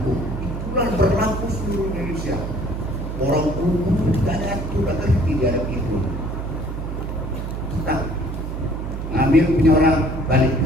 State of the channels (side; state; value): right; noise; hum, 5 dB below the sound